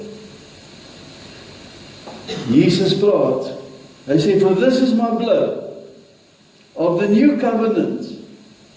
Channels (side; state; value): both; identical; correlation 1.00